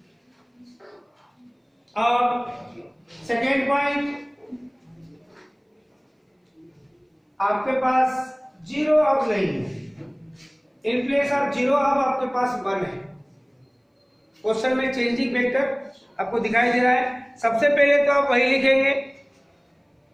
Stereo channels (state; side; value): identical; both; correlation 1.00